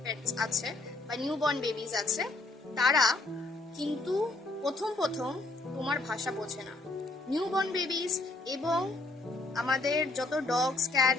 পেটস আছে বা নিউ বর্ন বেবিজ আছে, তারা কিন্তু প্রথম প্রথম তোমার ভাষা বোঝে না। নিউ বর্ন বেবিজ এবং আমাদের যত ডগস,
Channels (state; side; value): quieter; right; 3.0 dB